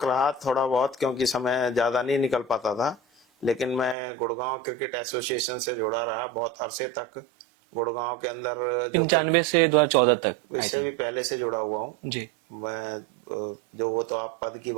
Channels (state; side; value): drops out; left; at 4.0 s